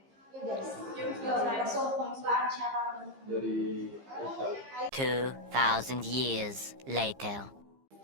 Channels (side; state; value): left; late; 15 ms